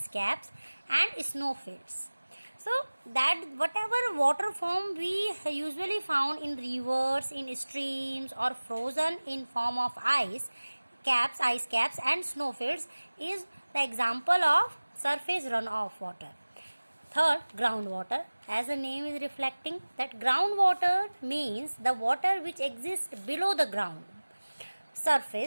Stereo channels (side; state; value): both; inverted; correlation -1.00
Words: caps and snowfields. So that whatever water form we usually found in rivers, in streams, or frozen in form of ice caps and snowfields is the example of surface runoff water. Third, groundwater. As the name is reflecting, that groundwater means the water which exists below the ground